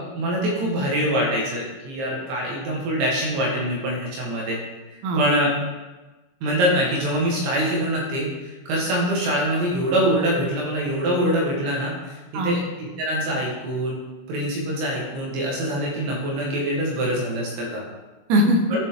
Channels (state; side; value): late; left; 22 ms